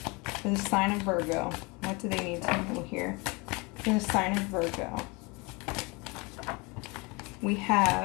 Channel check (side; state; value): right; quieter; 27.5 dB